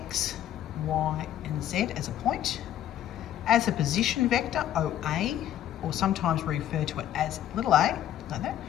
Y and Z as a point. As a position vector, OA, or sometimes we refer to it as little a, like that,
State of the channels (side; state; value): right; quieter; 11.6 dB